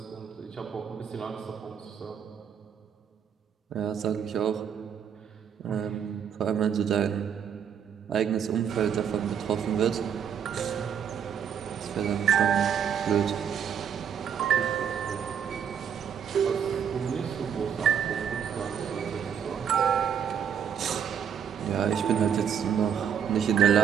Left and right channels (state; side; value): quieter; left; 8.1 dB